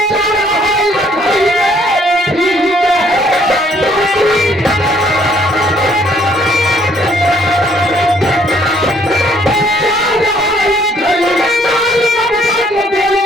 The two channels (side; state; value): both; normal; correlation 0.64